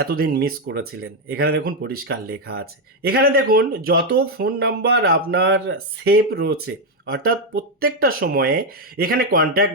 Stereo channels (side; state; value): both; normal; correlation 0.04